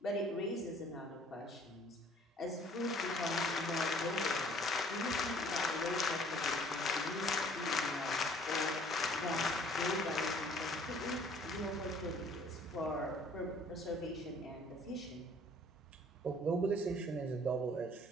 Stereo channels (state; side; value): normal; both; correlation 0.56